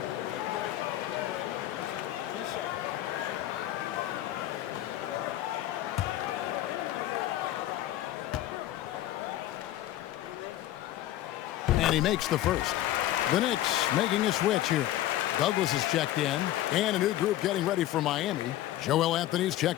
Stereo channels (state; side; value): quieter; right; 14.0 dB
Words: And he makes the first. The Knicks making a switch here. Douglas is checked in. And a new group getting ready for Miami. Joel Anthony's